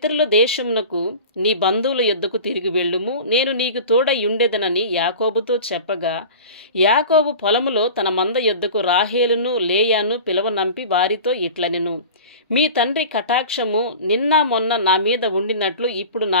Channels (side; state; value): both; inverted; correlation -0.37